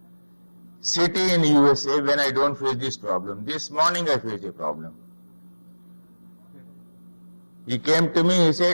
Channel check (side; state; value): both; inverted; correlation -1.00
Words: city in USA when I don't face this problem. This morning I faced a problem. He came to me, he